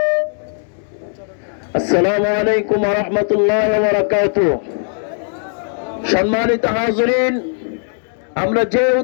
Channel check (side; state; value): right; silent; digital silence